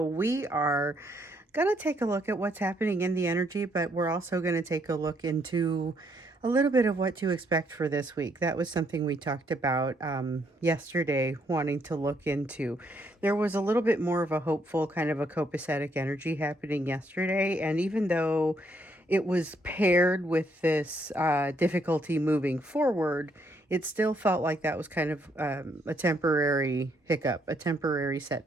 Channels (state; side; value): normal; both; correlation 0.72